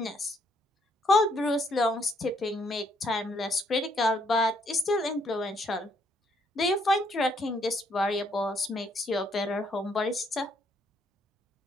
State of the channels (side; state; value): both; normal; correlation 0.70